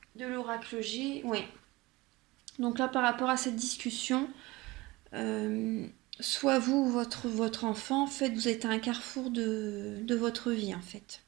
de l'oracle G. Oui. Donc là, par rapport à cette discussion, euh, soit vous ou votre enfant, en fait, vous êtes à un carrefour de votre vie, en fait.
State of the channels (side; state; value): left; quieter; 21.4 dB